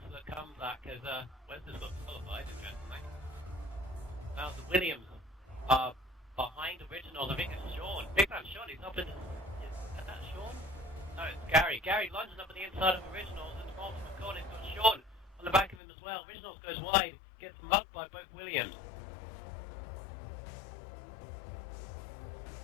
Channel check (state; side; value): drops out; right; at 15.8 s